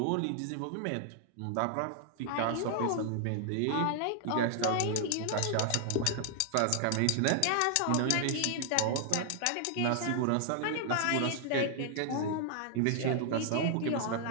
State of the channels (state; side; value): different; both; correlation 0.00